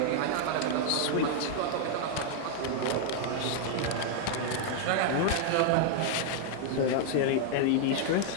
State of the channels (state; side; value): different; both; correlation 0.00